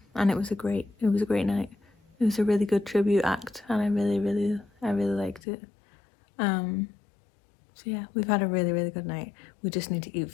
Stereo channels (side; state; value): right; drops out; at 5.4 s